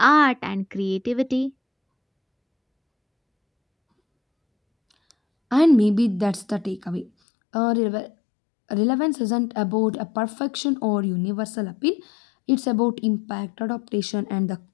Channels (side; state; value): right; drops out; at 7.1 s